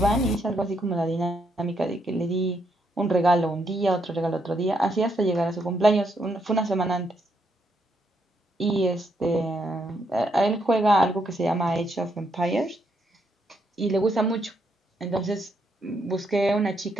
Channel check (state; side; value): normal; both; correlation 0.76